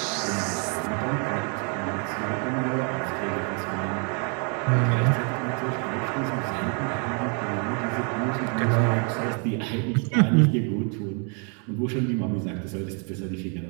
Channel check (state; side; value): quieter; left; 37.8 dB